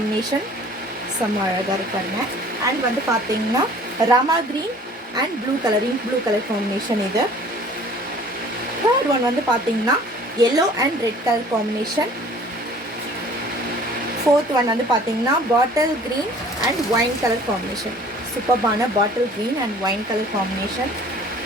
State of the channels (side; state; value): both; normal; correlation 0.50